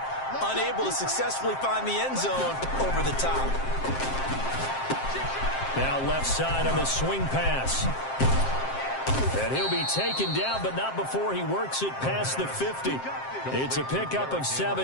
unable to successfully find the end zone over the top. Now left side on the swing pass. And he'll be taken down, but not before he works it past the 50. It's a pickup of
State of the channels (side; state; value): right; late; 7.6 ms